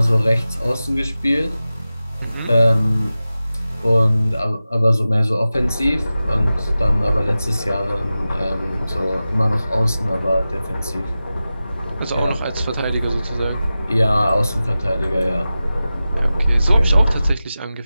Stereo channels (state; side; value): inverted; both; correlation -0.94